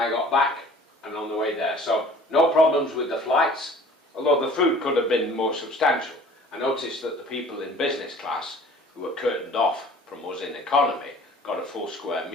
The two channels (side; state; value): both; normal; correlation 0.49